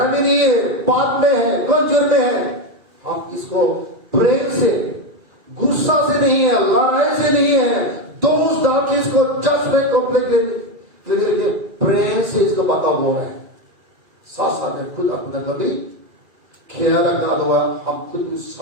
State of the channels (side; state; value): left; late; 2.4 ms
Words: नहीं है, पाप में है, कमजोर में है, हम इसको प्रेम से, गुस्सा से नहीं है, लड़ाई से नहीं है, दोस्त डाल के इसको जस्ट कंप्लेंट प्रेम से इसको बता बोल रहे हैं। साथ साथ में खुद अपना कभी ख्याल रखना होगा, हम खुद उस